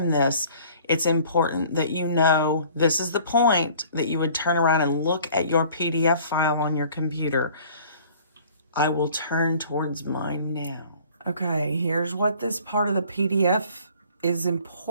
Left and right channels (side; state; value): both; inverted; correlation -0.52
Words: this. It's important that you know this is the point that you would turn around and look at your PDF file on your computer. I will turn towards mine now. Okay, here's what this part of the PDF is